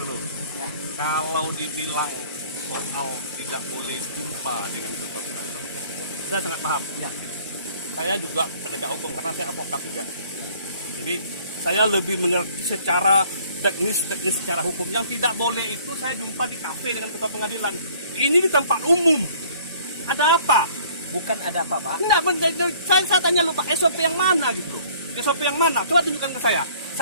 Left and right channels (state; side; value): inverted; both; correlation -0.56